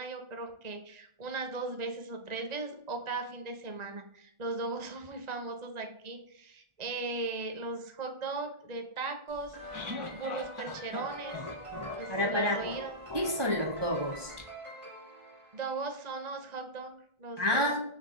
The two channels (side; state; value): left; late; 1.4 ms